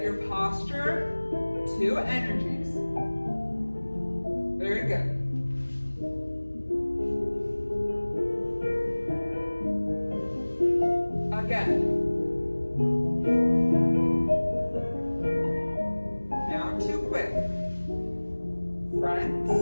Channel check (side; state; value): both; inverted; correlation -1.00